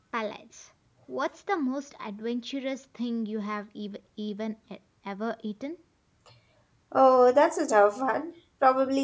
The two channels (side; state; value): both; identical; correlation 1.00